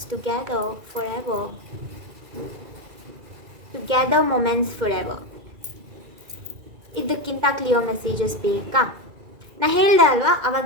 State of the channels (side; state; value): left; late; 2.1 ms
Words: together forever. ಇದಕ್ಕಿಂತ ಕ್ಲಿಯರ್ ಮೆಸೇಜಸ್ ಬೇಕಾ? ನಾ ಹೇಳ್ದೆ ಅಲ್ವಾ